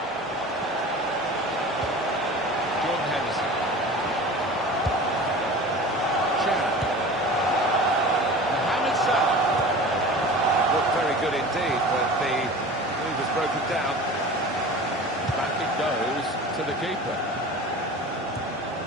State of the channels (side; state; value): both; normal; correlation 0.38